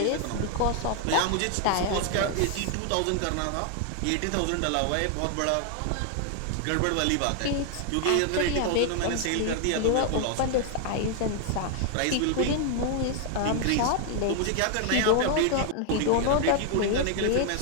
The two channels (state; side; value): different; both; correlation 0.00